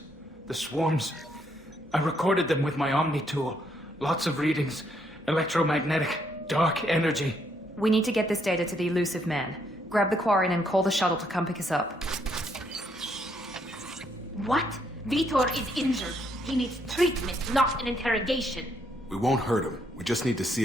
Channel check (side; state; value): both; normal; correlation 0.73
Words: The swarms. I recorded them with my Omni tool. Lots of readings. Electromagnetic. Dark energy. We need to get this data to the Elusive Man. Grab the Quarian and call the shuttle to come pick us up. What? Vitor is injured. He needs treatment, not an interrogation. We won't hurt him. We just need to